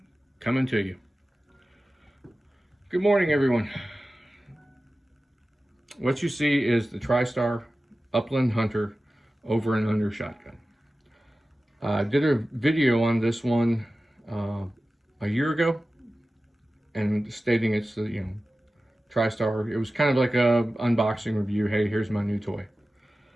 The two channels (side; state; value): both; normal; correlation 0.95